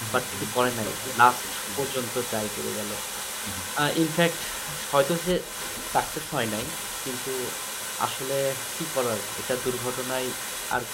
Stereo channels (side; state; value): both; identical; correlation 1.00